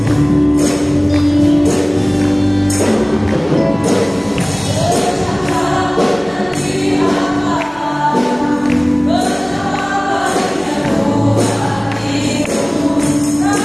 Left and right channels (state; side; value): noise; right; hum, 27 dB below the sound